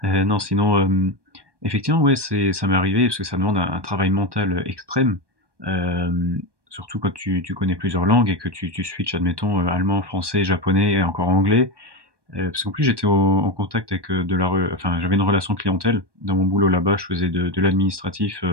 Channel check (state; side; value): late; left; 1.2 ms